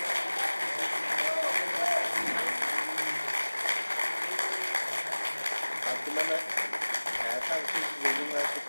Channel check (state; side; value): inverted; both; correlation -1.00